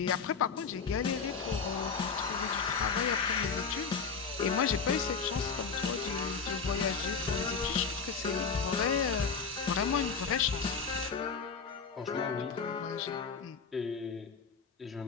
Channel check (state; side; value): quieter; right; 5.5 dB